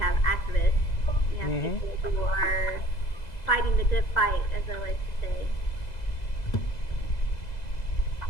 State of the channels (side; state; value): right; late; 2.0 ms